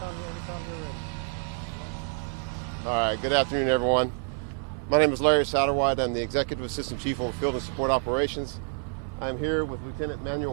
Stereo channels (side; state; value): left; quieter; 36.7 dB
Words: All right. Good afternoon, everyone. My name is Larry Satterwhite. I'm the Executive Assistant Chief of Field and Support Operations. I'm here with Lieutenant